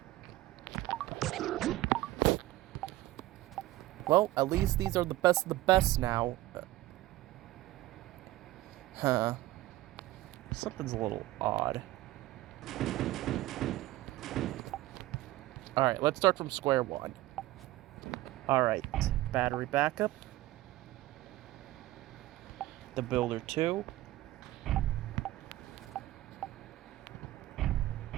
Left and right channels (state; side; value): quieter; left; 16.8 dB